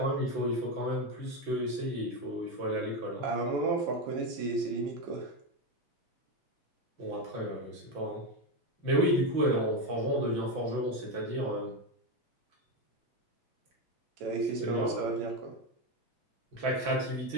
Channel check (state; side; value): late; left; 6.1 ms